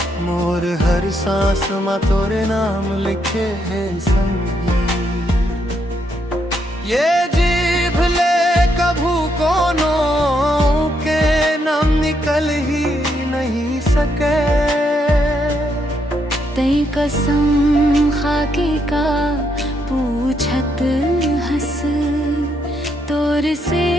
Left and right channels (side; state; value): both; normal; correlation 0.76